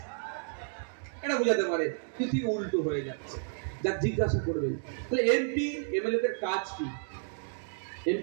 এটা বুঝাতে পারে। তুই উল্টো হয়ে যাচ্ছে, যা জিজ্ঞাসা করবেন। তাহলে এমপি এমএলএ দের কাজ কি?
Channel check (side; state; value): left; silent; digital silence